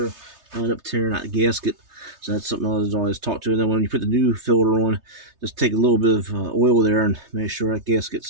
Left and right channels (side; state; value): left; late; 3.3 ms